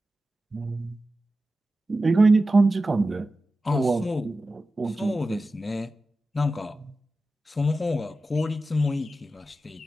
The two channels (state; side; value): normal; both; correlation 0.93